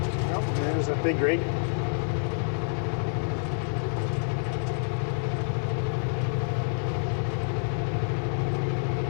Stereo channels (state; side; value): silent; right; 58 dB below the other